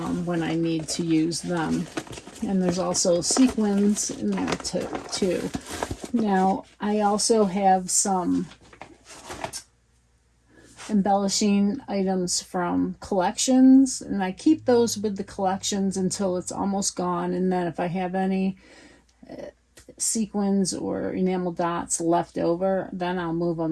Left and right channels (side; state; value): both; identical; correlation 1.00